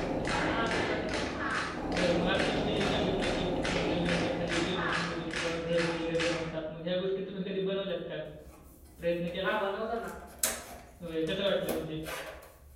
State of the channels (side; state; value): both; identical; correlation 1.00